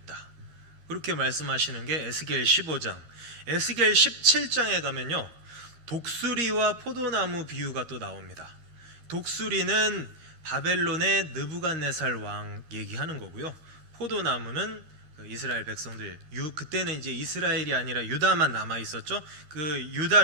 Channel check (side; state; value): left; late; 13 ms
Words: 그렇게 말씀하시는 게 에스겔 15장. 에스겔 17장에 가면요 독수리와 포도나무 비유가 또 나옵니다. 독수리는 바벨론의 느부갓네살 왕 얘기하는 거고요. 포도나무는 이스라엘 백성들, 그때는 이제 이스라엘이 아니라 유다만 남아 있었죠. 그